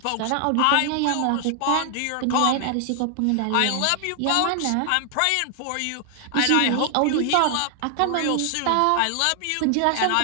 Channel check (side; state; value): both; different; correlation 0.00